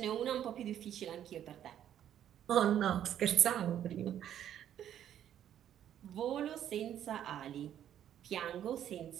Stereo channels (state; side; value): quieter; left; 10.5 dB